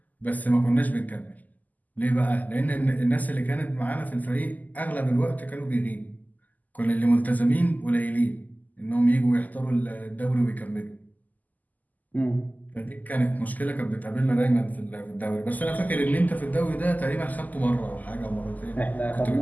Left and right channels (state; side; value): late; right; 0.081 ms